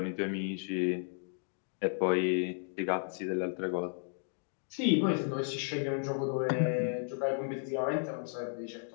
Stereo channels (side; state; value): right; silent; digital silence